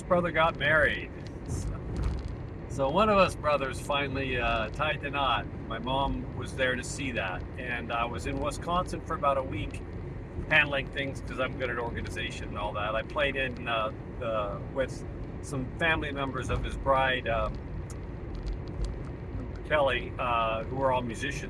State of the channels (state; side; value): identical; both; correlation 1.00